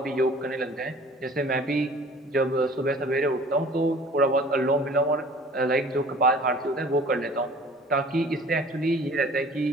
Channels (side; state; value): both; normal; correlation 0.48